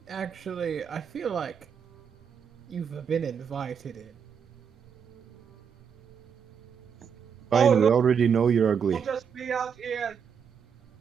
actually, I feel like you've been invited in. Fine, we no. already know you're ugly. I'll just be out here.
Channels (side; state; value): left; quieter; 7.1 dB